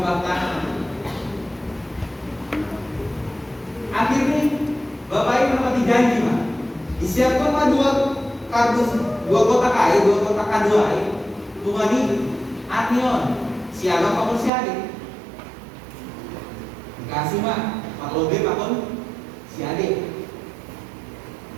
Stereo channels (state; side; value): drops out; left; at 14.5 s